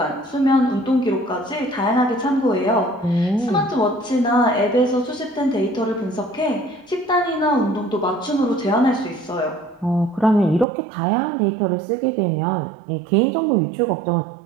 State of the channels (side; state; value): left; drops out; at 10.7 s